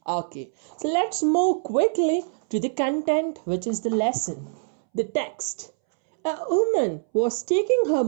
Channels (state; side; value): silent; left; 62 dB below the other